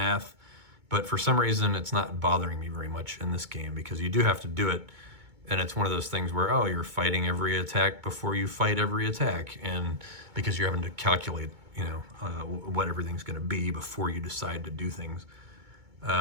but for some reason it's not bothering me very much in this game, because you do have to do it, and it's one of those things where, oh, you're fighting every attack before you fight every attack, and because you're having to calculate what everything's going to be before you decide to do things,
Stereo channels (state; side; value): late; left; 2.2 ms